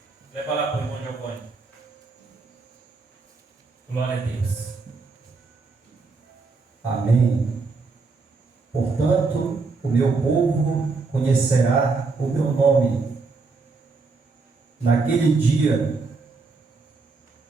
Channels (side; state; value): left; quieter; 4.2 dB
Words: Leva lá para o irmão Giovanni. Glória a Deus. Amém. Portanto, o meu povo conhecerá o meu nome. Naquele dia,